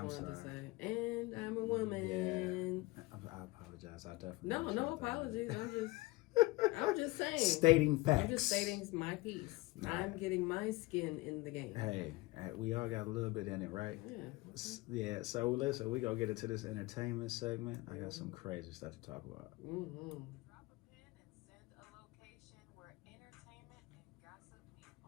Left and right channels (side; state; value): right; quieter; 21.5 dB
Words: to say. And I'm a woman. Yeah. I apologize. I definitely. No apologies. I'm just saying. Stating facts. I'm just stating my piece. Nah. I'm getting my skin in the game. Hey, we all got a little bit in it, right? Yeah. Yeah, so listen, we gonna get into this entertainment segment. I got some crazy stuff to talk about. Drop a pin and send a location where entertainment and gossip meet